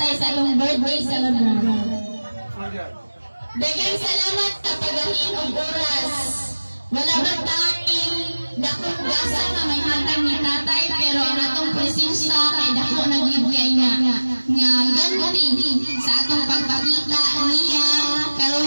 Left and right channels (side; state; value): both; inverted; correlation -1.00